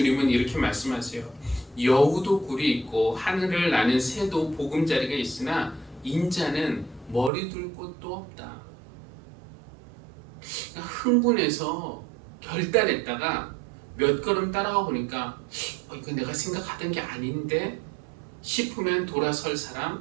이렇게 말씀하세요. 여우도 굴이 있고 하늘을 나는 새도 보금자리가 있으나 인자는 머리 둘 곳도 없다. 흥분해서 결단했다가 몇 걸음 따라가 보니까 이거 내가 생각하던 게 아닌데 싶으면 돌아설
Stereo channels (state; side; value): drops out; left; at 7.3 s